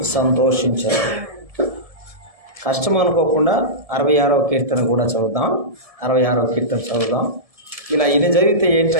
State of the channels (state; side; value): late; left; 1.7 ms